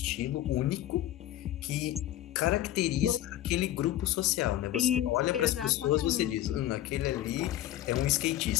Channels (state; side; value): quieter; right; 13.3 dB